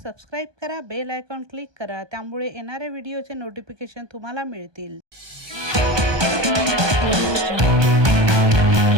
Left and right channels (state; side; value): late; left; 1.2 ms